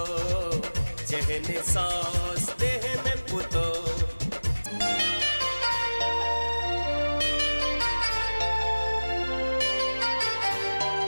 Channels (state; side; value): inverted; both; correlation -1.00